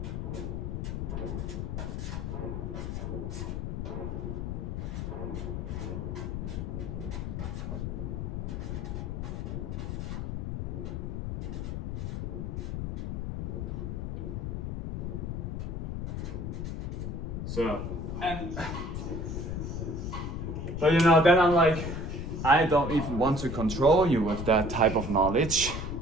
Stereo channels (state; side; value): noise; left; rumble, 3 dB below the sound